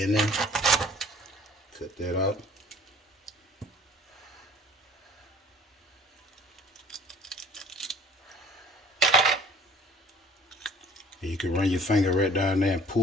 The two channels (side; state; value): both; normal; correlation 0.51